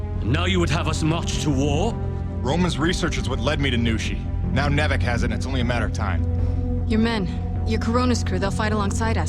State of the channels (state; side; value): identical; both; correlation 1.00